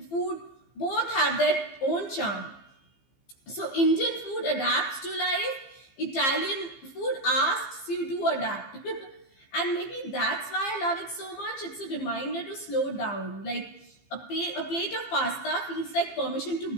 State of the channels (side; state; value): right; late; 15 ms